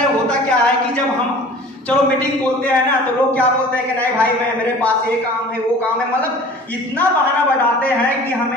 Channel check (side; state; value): both; normal; correlation 0.44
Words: होता क्या है कि जब हम चलो मीटिंग बोलते हैं ना, तो लोग क्या बोलते हैं कि नहीं भाई मैं मेरे पास ये काम है वो काम है, मतलब इतना बहाना बनाते हैं कि